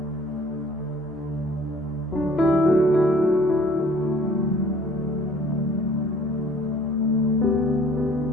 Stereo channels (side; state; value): both; normal; correlation 0.54